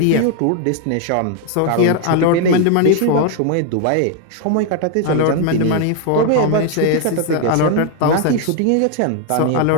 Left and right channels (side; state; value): both; different; correlation 0.00